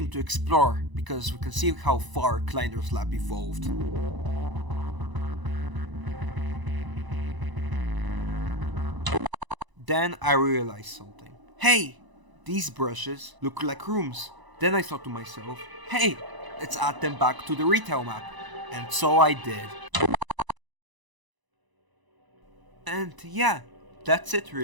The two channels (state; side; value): late; left; 1.0 ms